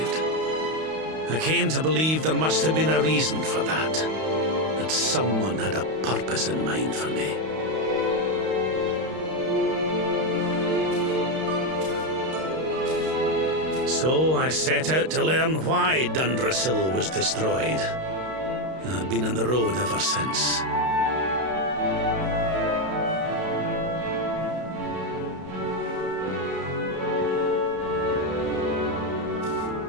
I came to believe there must have been a reason for that. That someone had a purpose in mind for me. So I set out to learn why Dundrasil was destroyed. I've been on the road ever since.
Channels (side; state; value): left; late; 32 ms